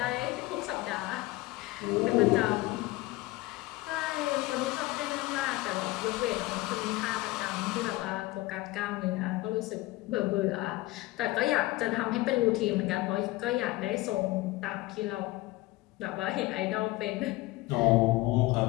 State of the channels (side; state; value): right; quieter; 19.4 dB